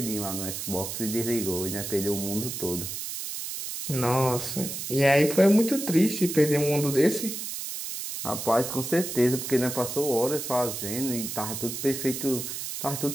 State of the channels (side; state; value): right; noise; hiss, 6 dB below the sound